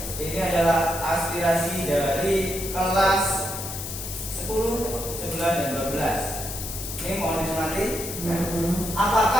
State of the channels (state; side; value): noise; left; hiss, 7 dB below the sound